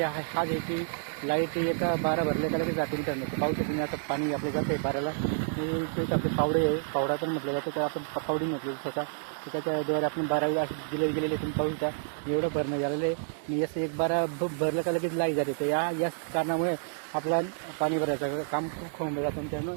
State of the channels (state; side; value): silent; left; digital silence